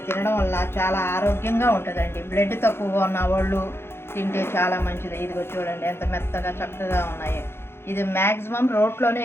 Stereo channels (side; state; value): right; late; 0.12 ms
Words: తినడం వల్ల చాలా ఆరోగ్యంగా ఉంటుందండి. బ్లడ్ తక్కువగా ఉన్న వాళ్ళు తింటే చాలా మంచిది. ఇదిగో చూడండి ఎంత మెత్తగా చక్కగా ఉన్నాయి. ఇది మ్యాక్సిమం రోట్లోనే